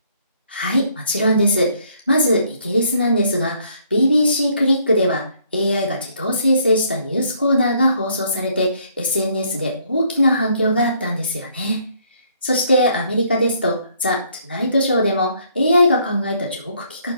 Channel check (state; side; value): inverted; both; correlation -0.66